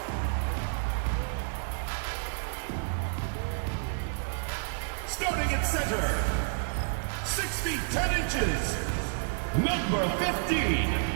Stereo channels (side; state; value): left; silent; digital silence